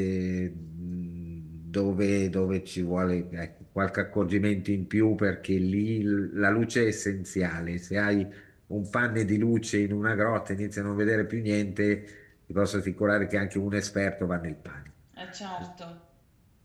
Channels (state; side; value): identical; both; correlation 1.00